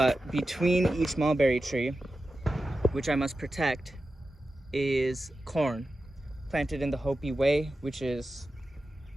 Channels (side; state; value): both; normal; correlation 0.92